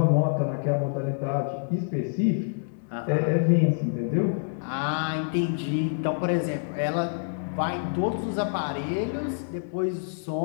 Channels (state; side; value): silent; right; digital silence